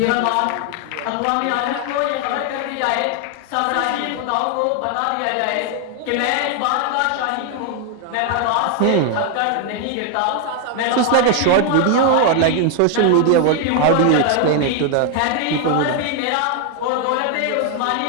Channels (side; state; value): both; different; correlation 0.00